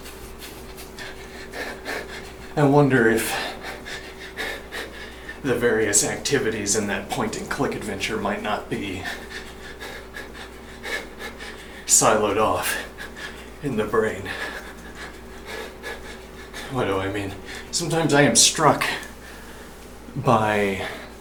if the various activities in that point-and-click adventure might not be siloed off in the brain. What do I mean? Sometimes I am struck by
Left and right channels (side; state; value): both; identical; correlation 1.00